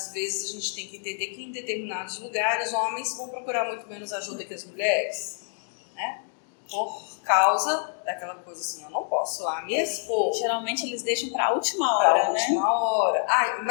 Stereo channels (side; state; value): right; silent; 60 dB below the other